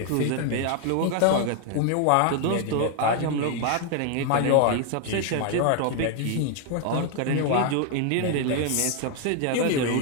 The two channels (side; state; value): both; different; correlation 0.00